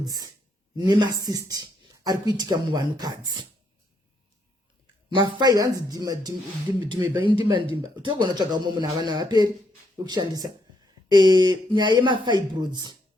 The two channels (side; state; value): both; normal; correlation 0.75